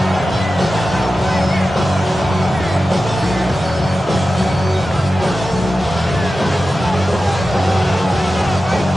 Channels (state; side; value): normal; both; correlation 0.93